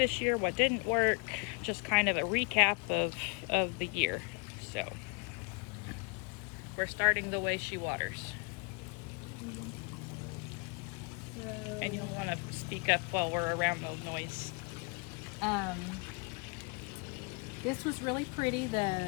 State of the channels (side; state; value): right; quieter; 33.2 dB